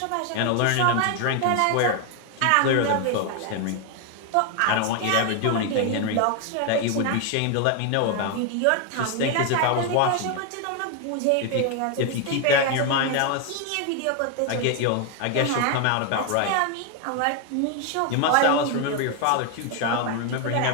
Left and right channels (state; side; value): different; both; correlation 0.01